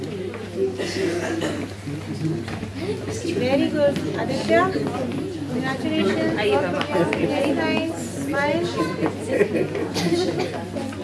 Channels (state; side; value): identical; both; correlation 1.00